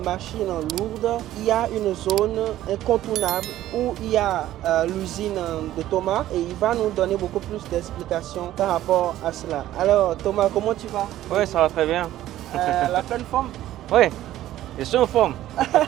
lourdes, il y a une zone incontournable où il y a l'usine de Thomas et il va nous donner beaucoup plus d'explications par rapport à cela. Alors Thomas, comment tu vas? Oui, ça va très bien. La pleine forme? Oui, je suis en forme.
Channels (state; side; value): quieter; left; 13.7 dB